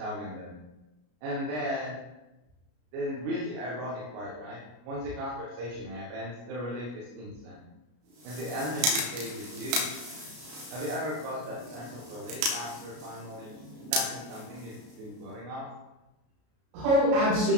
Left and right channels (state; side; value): late; left; 33 ms